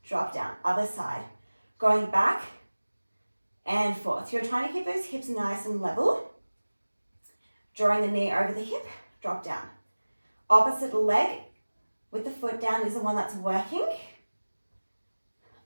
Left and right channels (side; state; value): both; inverted; correlation -1.00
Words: Drop down. Other side. Going back and forth. You're trying to keep those hips nice and level. Drawing the knee over the hip. Drop down. Opposite leg with the foot down is the one that's working.